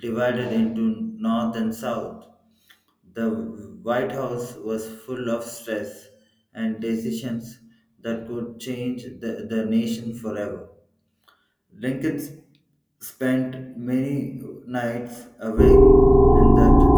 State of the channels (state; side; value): identical; both; correlation 1.00